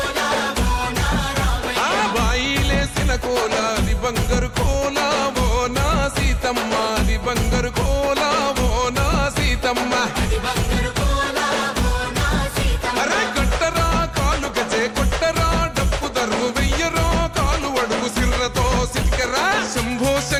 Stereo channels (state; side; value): identical; both; correlation 1.00